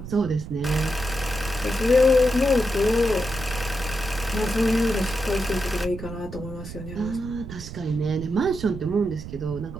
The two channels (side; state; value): right; noise; rumble, 11 dB below the sound